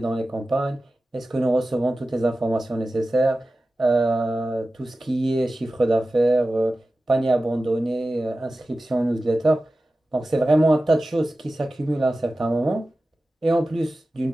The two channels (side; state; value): both; normal; correlation 0.95